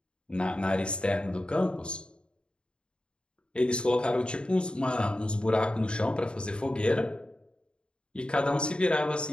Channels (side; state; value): right; late; 0.053 ms